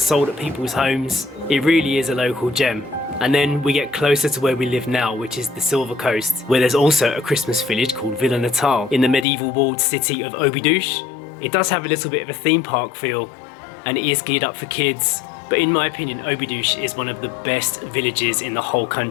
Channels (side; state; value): right; drops out; at 9.2 s